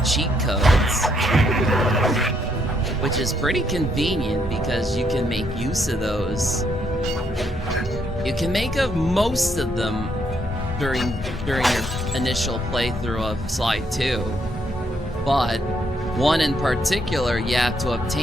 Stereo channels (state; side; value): normal; both; correlation 0.73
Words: cheat codes, which is pretty convenient because you can make use of those. You can make of most of them during your initial playthrough of Sly 2, but one in particular you have to